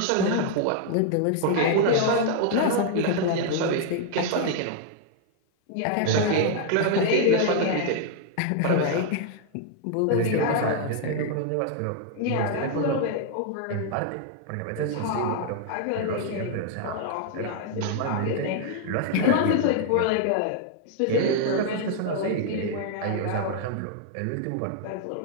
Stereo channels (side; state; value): both; different; correlation 0.00